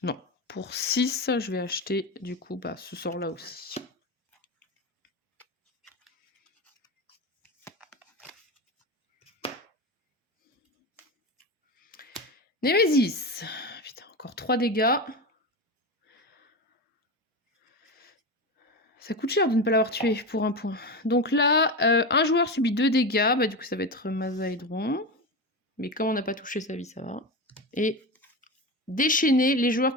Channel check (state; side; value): normal; both; correlation 0.20